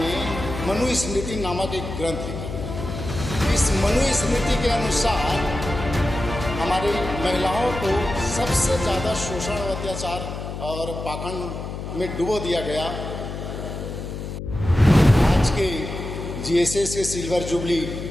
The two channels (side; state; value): left; noise; hum, 7 dB below the sound